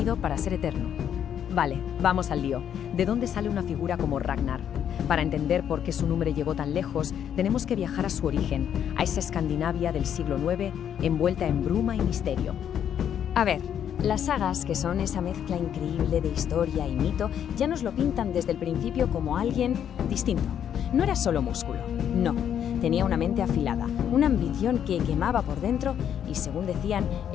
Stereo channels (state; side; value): quieter; right; 9.2 dB